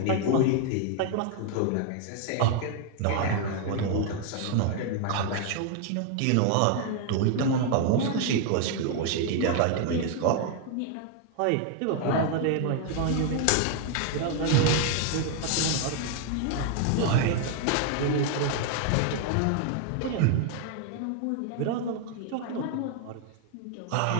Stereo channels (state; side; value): different; both; correlation 0.00